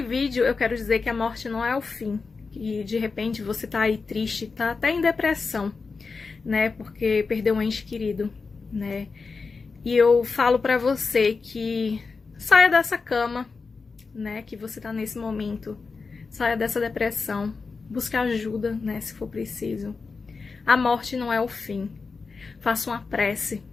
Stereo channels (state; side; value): quieter; right; 4.5 dB